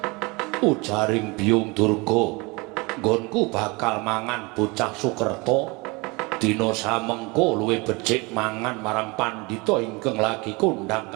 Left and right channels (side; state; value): left; quieter; 26.4 dB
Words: Ujaring Biyung Durga, nggonku bakal mangan bocah Sukerta. Dina samengko luwih becik mangan marang pandhita ingkang lagi kondhang